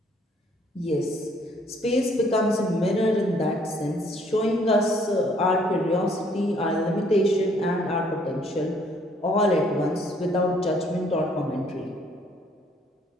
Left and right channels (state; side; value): normal; both; correlation 0.63